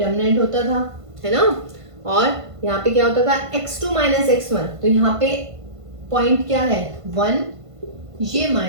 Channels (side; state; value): left; late; 1.5 ms